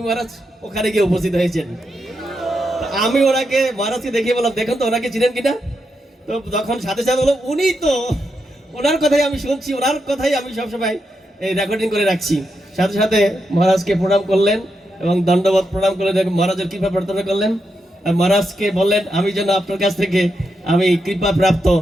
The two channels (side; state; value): both; normal; correlation 0.84